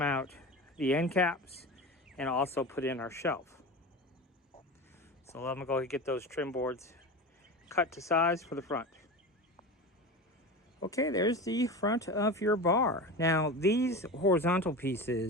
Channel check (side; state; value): both; normal; correlation 0.28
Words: out the end caps and also put in our shelf. So I'm gonna go ahead and get those trim boards cut to size for the front. Okay, there's the front of your bar. Now these horizontal